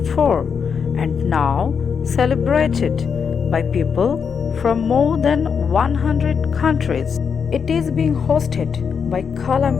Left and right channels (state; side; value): quieter; right; 6.5 dB